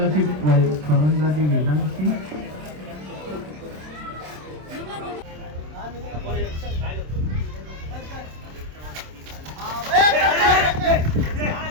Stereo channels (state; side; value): late; left; 27 ms